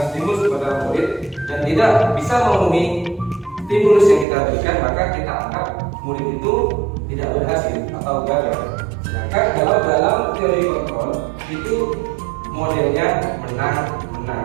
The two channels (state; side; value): drops out; left; at 4.2 s